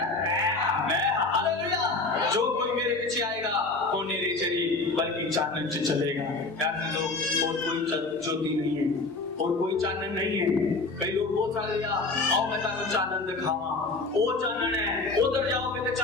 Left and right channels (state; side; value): quieter; right; 3.5 dB